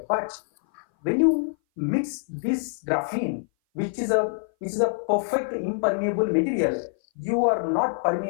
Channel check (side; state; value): right; silent; 58 dB below the other